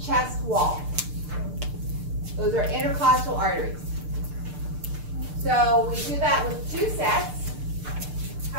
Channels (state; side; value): late; left; 6.7 ms